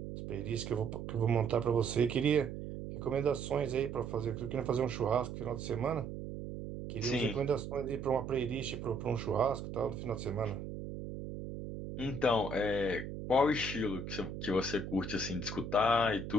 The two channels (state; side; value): noise; right; hum, 7 dB below the sound